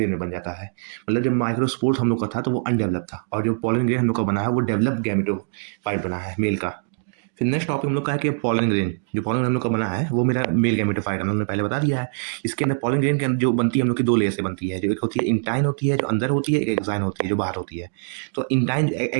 में बन जाता है। मतलब जब माइक्रोस्पोर हम लोग का था तो वो अनडेवलप था, और जो पॉलन ग्रेन हम लोग का बना है वो डेवलप गैमेटोफाइट बना है, मेल का। फिर नेक्स्ट टॉपिक हम लोग का है कि पॉलन ग्रेन। जो पॉलन ग्रेन हम लोग का बना है वो मेरा मेल गैमेटोफाइट, हम लोग ने पहले बता दिया है। इसके अंदर पॉलन ग्रेन के अंदर जो बनती है हम लोग की 2 लेयर से बनती है। जो एक होती है इंटाइन होती है, जो अंदर होती है, एक एक्साइन होती है जो बाहर होती है। तो इंटाइन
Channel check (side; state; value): left; silent; digital silence